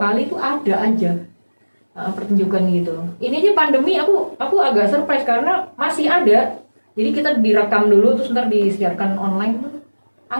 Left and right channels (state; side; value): inverted; both; correlation -1.00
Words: itu ada aja pertunjukan gitu. Ini aja pandemi aku agak surprise karena masih ada. Jadi kita direkam dulu terus ntar disiarkan online tuh.